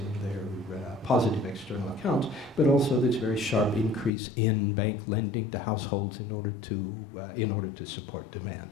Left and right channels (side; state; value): right; drops out; at 4.1 s